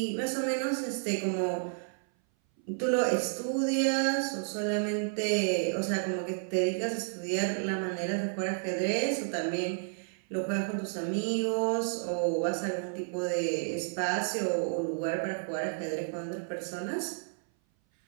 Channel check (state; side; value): silent; left; 57 dB below the other